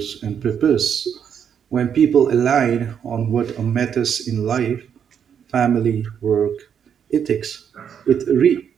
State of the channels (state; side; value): quieter; left; 8.0 dB